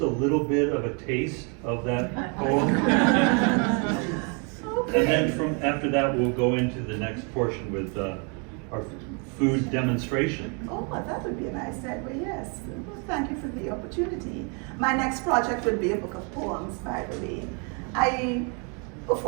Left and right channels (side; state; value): left; quieter; 36.0 dB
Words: a little bit of a taste of that poem? Okay. And then after that, we'll go into the next portion with our food demonstration. Oh, that would be a nice segue, yes. Well, thank you for the opportunity. My next project would be a book of poems, by the way. I